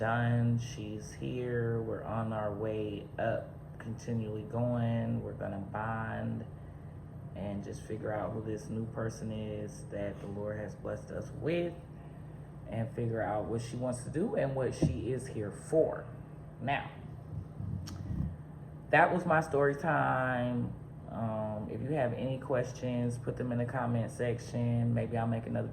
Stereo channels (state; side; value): identical; both; correlation 1.00